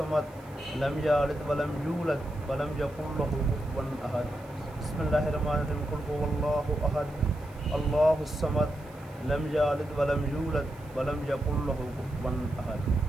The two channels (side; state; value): right; noise; hiss, 27 dB below the sound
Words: लम यलिद वलम यूलद वलम यकुल लहू कुफुवन अहद। बिस्मिल्लाहिर्रहमानिर्रहीम। कुल हुवल्लाहु अहद अल्लाहुस समद लम यलिद वलम यूलद वलम यकुल लहू कुफुवन अहद।